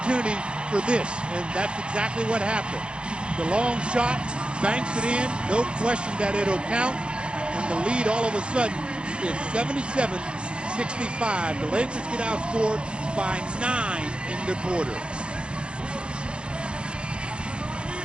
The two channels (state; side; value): late; left; 0.056 ms